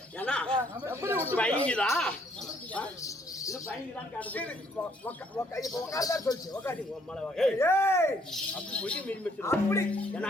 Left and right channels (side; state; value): both; normal; correlation 0.66